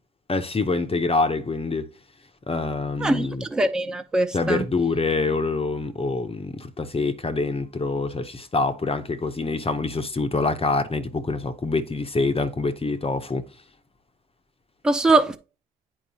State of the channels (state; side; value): normal; both; correlation 0.61